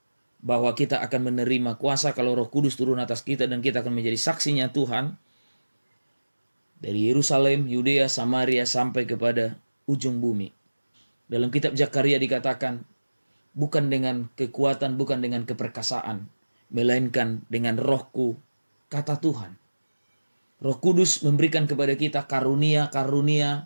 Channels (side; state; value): both; inverted; correlation -1.00